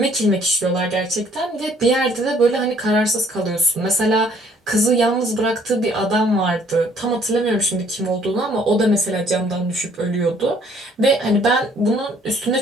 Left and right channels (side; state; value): both; normal; correlation 0.61